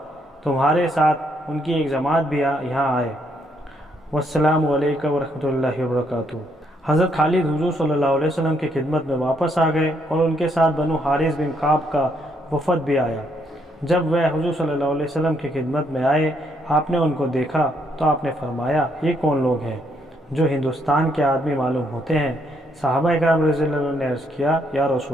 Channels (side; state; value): both; normal; correlation 0.73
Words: تمہارے ساتھ ان کی ایک جماعت بھی یہاں آئے۔ والسلام علیکم ورحمۃ اللہ وبرکاتہ۔ حضرت خالد حضور صلی اللہ علیہ وسلم کی خدمت میں واپس آ گئے اور ان کے ساتھ بنو حارث بن کعب کا وفد بھی آیا۔ جب وہ حضور صلی اللہ علیہ وسلم کی خدمت میں آئے، آپ نے ان کو دیکھا تو آپ نے فرمایا: یہ کون لوگ ہیں جو ہندوستان کے آدمی معلوم ہوتے ہیں؟ صحابہ کرام رضی اللہ عنہ نے عرض کیا: یا